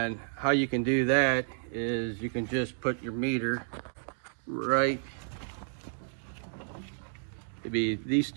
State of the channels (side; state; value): left; silent; digital silence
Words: how you can do that is you can just put your meter right, it'd be these